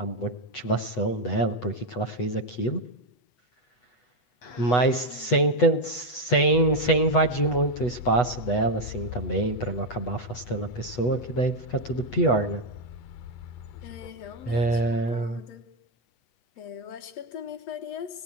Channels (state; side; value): late; right; 8.1 ms